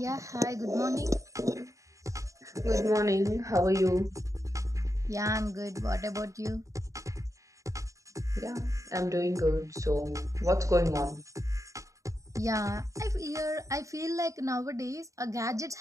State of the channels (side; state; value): left; late; 0.15 ms